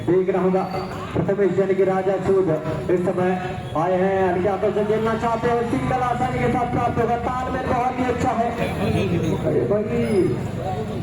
देखना होगा प्रथमेश यानी कि राजा सूद इस समय आए हैं, हल्के हाथों से खेलना चाहते हैं, सिंगल आसानी के साथ प्राप्त होगा। तालमेल बहुत ही अच्छा है।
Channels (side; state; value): both; identical; correlation 1.00